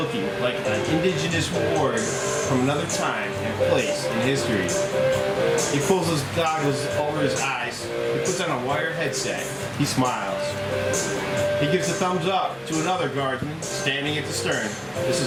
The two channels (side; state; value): both; identical; correlation 1.00